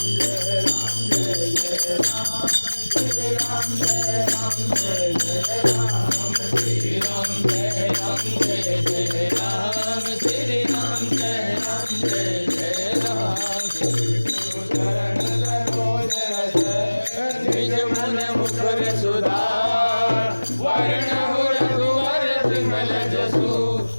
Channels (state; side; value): inverted; both; correlation -1.00